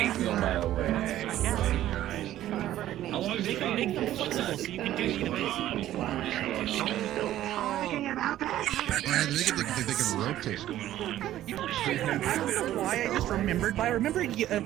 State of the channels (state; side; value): quieter; left; 13.2 dB